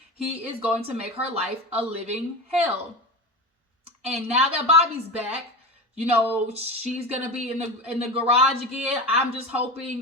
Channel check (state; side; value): normal; both; correlation 0.25